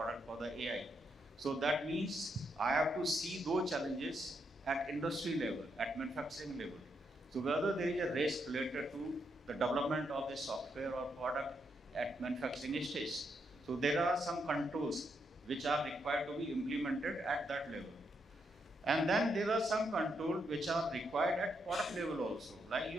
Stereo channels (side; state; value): both; normal; correlation 0.79